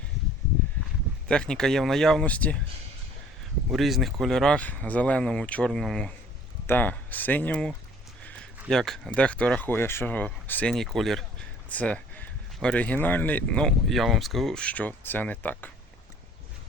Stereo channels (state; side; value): normal; both; correlation 0.53